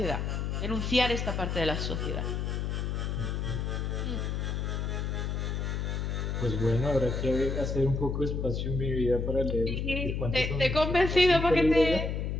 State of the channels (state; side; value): noise; left; hum, 1 dB below the sound